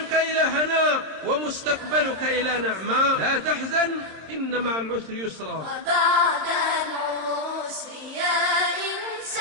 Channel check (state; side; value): late; left; 26 ms